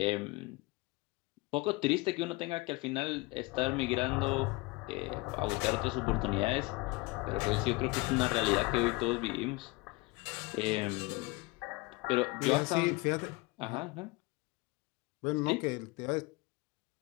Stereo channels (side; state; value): right; quieter; 23.7 dB